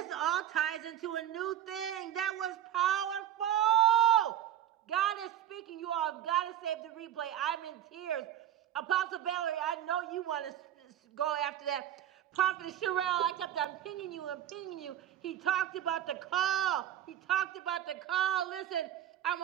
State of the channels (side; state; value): left; quieter; 11.2 dB